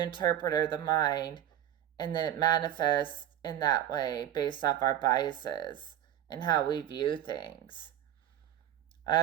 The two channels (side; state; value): left; quieter; 11.3 dB